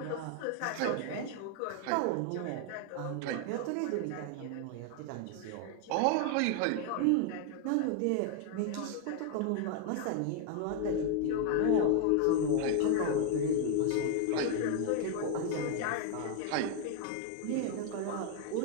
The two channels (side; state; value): both; different; correlation 0.00